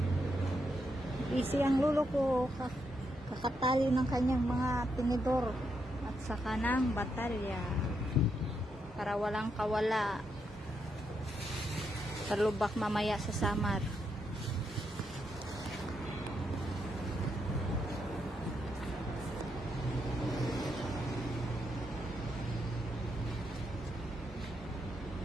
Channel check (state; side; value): normal; both; correlation 0.81